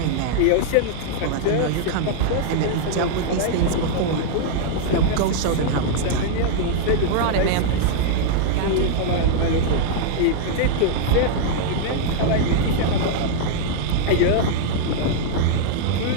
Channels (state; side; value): different; both; correlation -0.01